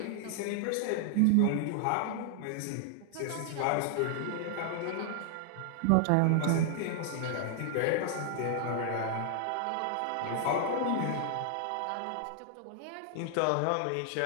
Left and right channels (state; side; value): different; both; correlation 0.00